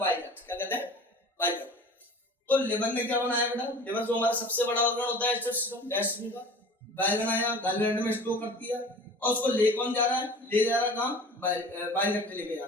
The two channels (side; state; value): both; normal; correlation 0.41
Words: डक्ट। क्या कहते हैं, बाइल डक्ट। तो लिवर ने क्या बनाया बेटा, लिवर जो हमारा सबसे बड़ा ऑर्गन होता है डाइजेशन का, बाइल बनाया, गाल ब्लैडर में स्टोर करती है और उसको ले कौन जा रहा है, ले जा रहा है कहाँ, बाइल डक्ट लेके जा